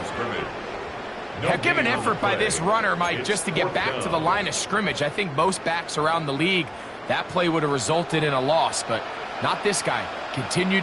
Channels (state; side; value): identical; both; correlation 1.00